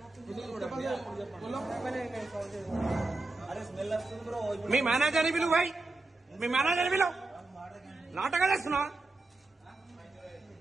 మీ మేనేజర్ని పిలువు భాయ్, మీ మేనేజర్ని పిలువు. నాటకాలు వేస్తున్నావా?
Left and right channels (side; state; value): left; quieter; 3.2 dB